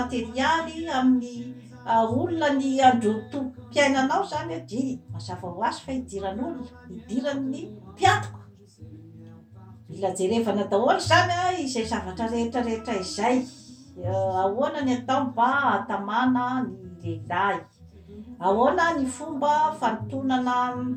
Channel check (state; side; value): identical; both; correlation 1.00